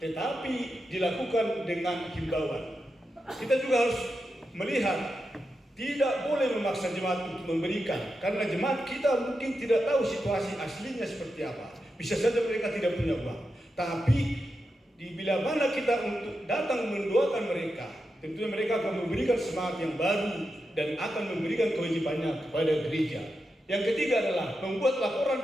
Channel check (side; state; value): both; normal; correlation 0.88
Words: dilakukan dengan himbauan. Kita juga harus melihat tidak boleh memaksa jemaat untuk memberikan, karena jemaat kita mungkin tidak tahu situasi aslinya seperti apa. Bisa saja mereka tidak punya uang, tapi bila mana kita untuk datang mendoakan mereka, tentunya mereka akan memberikan semangat yang baru dan akan memberikan kewajibannya kepada gereja. Yang ketiga adalah membuat